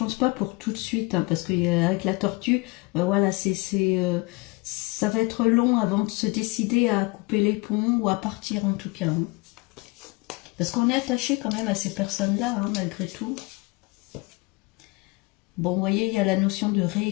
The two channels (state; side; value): quieter; right; 26.3 dB